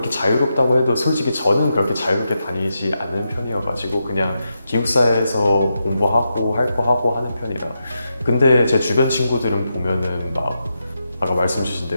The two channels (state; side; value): inverted; both; correlation -0.86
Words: 자유롭다고 해도 솔직히 저는 그렇게 자유롭게 다니지 않는 편이어가지고 그냥 기숙사에서 공부하고 할 거 하고 하는 편이라. 근데 제 주변 친구들은 보면은 막 아까 말씀 주신